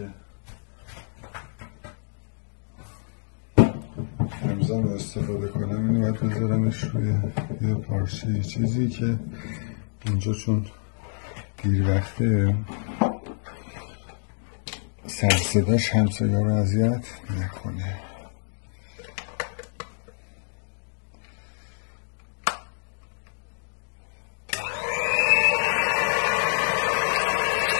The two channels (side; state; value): right; silent; digital silence